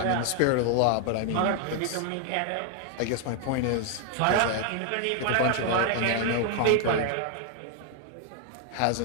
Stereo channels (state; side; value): different; both; correlation 0.00